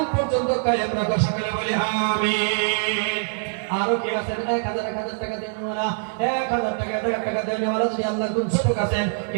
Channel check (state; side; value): silent; left; digital silence